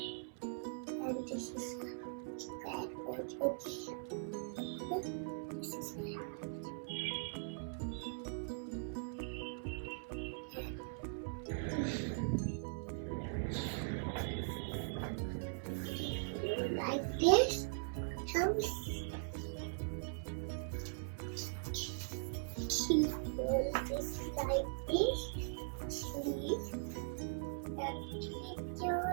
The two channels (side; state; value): left; silent; 51 dB below the other